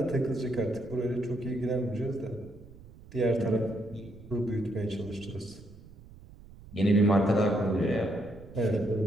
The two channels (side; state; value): right; noise; rumble, 20 dB below the sound